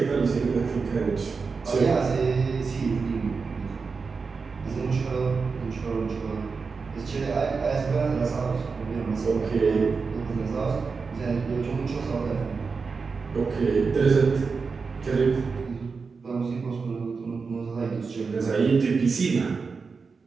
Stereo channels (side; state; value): left; quieter; 4.9 dB